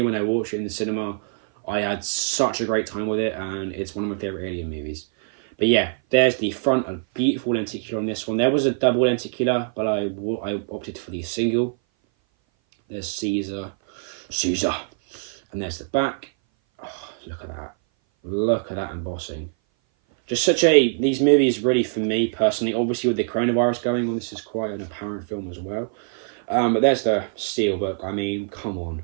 when I watched it in the cinema, I had such a great time with it, and it's one of my favourite Alien movies. But yeah, there's the front, a beautiful lenticular on this one. There was a double lenticular, but I opted for the single. There's Caesar, and there's the back. Oh, look at that. Look at that embossing. Just these movies really, for me personally, obviously with the coronavirus going on, this is quite an apparent film as well. But there's the Steelbook. I mean, come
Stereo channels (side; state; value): left; silent; 58 dB below the other